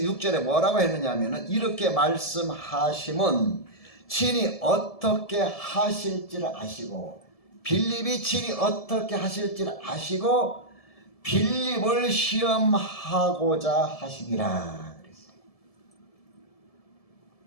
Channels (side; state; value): right; late; 1.7 ms